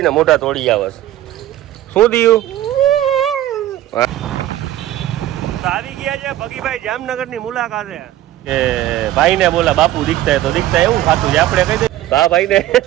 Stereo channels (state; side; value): quieter; left; 13.9 dB